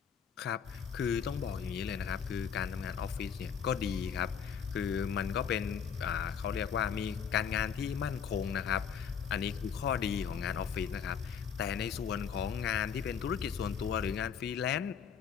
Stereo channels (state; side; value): quieter; right; 7.2 dB